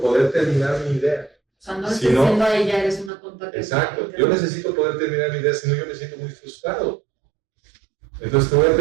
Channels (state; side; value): drops out; left; at 3.1 s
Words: terminar mi idea. O sea, no le Si estás no- diciendo a ella, eres una tonta. Exacto. Yo necesito poder terminar mi idea, si no yo me siento muy frustrado. Entonces te voy a